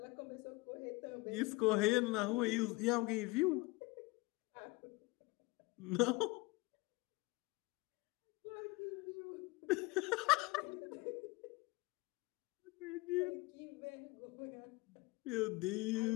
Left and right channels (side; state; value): right; quieter; 22.9 dB